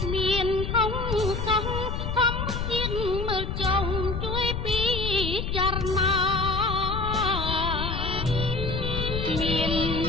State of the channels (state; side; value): noise; left; rumble, 3 dB below the sound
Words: ្មានហងសោះធម្មជាតិមើលចុងជួយពិចារណាមាន